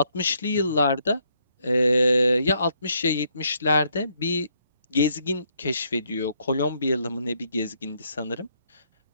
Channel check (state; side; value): inverted; both; correlation -0.72